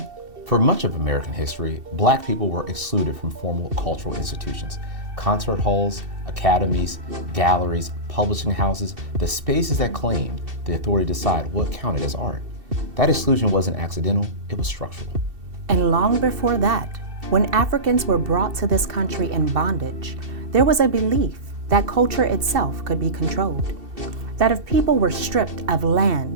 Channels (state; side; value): late; left; 2.7 ms